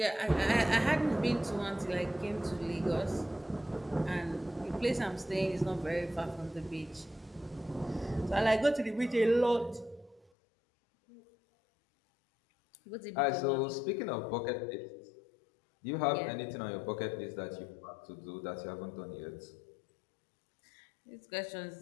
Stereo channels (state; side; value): drops out; right; at 10.3 s